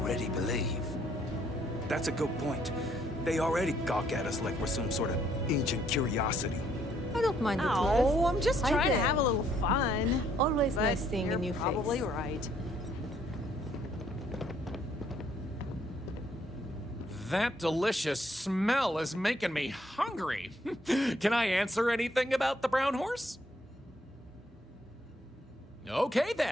believe? That's a good point. They already gawk at us like we're some sort of ancient curiosity. I don't mind the Oh, tourists. I'm just I trying to do. have a little fun. Always But nice seeing a you're new probably face. right. That delicious smell is making me hungry. Can I answer anything about the brown horse? Okay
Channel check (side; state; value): both; normal; correlation 0.67